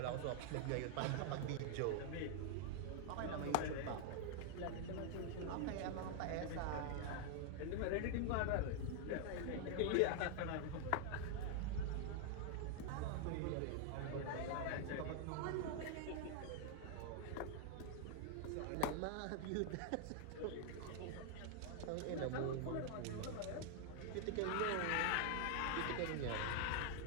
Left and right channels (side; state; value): both; different; correlation 0.00